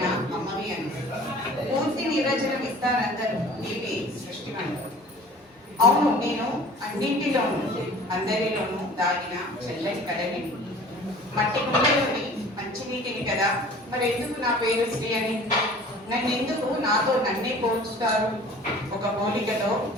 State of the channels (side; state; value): both; normal; correlation 0.46